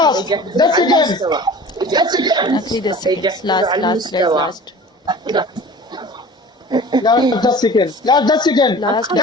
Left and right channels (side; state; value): both; normal; correlation 0.41